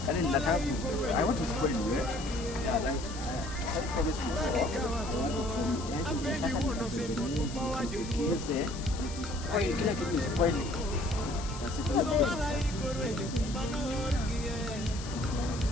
Yaani ninataka I want to spoil you. Yeah, like I promise you. Spoil kila kitu spoil.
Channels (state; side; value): noise; left; hiss, 13 dB below the sound